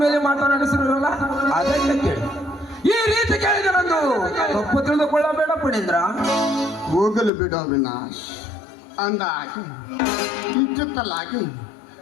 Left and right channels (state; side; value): drops out; right; at 7.3 s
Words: ಮೇಲೆ ಮಾತನಾಡಿಸಿರಲ್ಲ, ಅದಕ್ಕೆ ಕೇಳಿ. ಈ ರೀತಿ ಕೇಳಿದರಂದು ತಪ್ಪು ತಿಳಿದುಕೊಳ್ಳಬೇಡ ಪಣೇಂದ್ರ. ಹೋಗಲು ಬಿಡು ಅವಿನಾಶ್. ಅಂದಾಗಿ ಇಚ್ಚಿತ್ತಲಾಗಿ